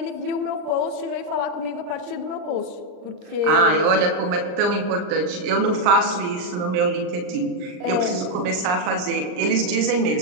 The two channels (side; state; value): left; late; 39 ms